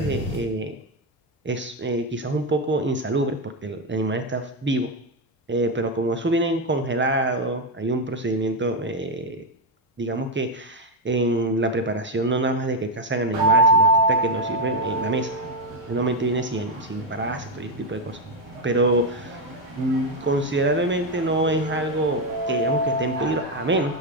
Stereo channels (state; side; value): normal; both; correlation 0.06